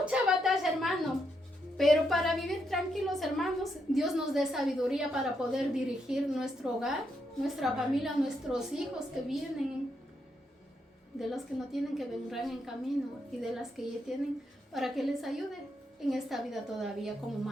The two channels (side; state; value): both; normal; correlation 0.80